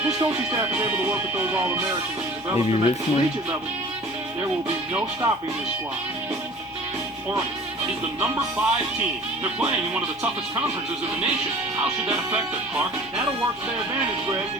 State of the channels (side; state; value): both; normal; correlation 0.45